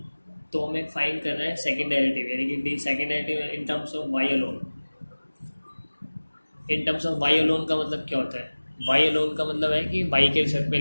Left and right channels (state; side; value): inverted; both; correlation -1.00